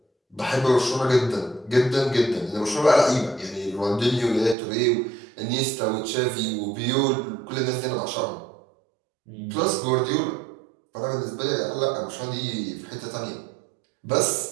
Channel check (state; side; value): drops out; left; at 4.5 s